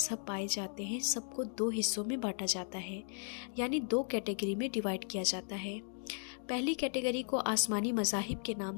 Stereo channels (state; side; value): silent; right; 54 dB below the other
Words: پائے جاتے ہیں سب کو دو حصوں میں بانٹا جاتا ہے، یعنی دو کیٹیگری میں ڈیوائیڈ کیا جاتا ہے۔ پہلی کیٹیگری کو آسمانی مذاہب کے نام